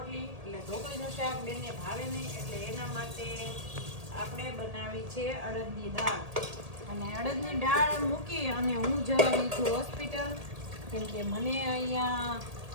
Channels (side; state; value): left; late; 1.8 ms